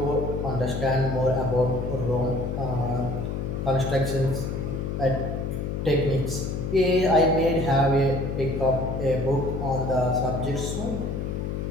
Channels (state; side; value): noise; left; hum, 3 dB below the sound